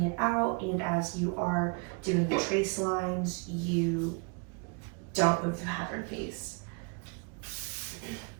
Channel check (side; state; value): left; quieter; 34.5 dB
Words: it out and as you are doing the trace lines, you don't move the pattern piece.